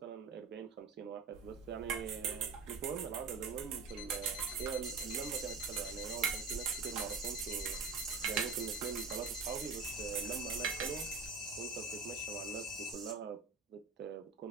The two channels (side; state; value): left; quieter; 4.5 dB